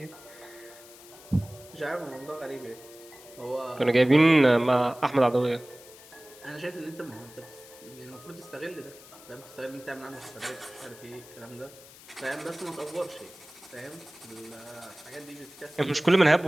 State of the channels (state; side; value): noise; left; hiss, 20 dB below the sound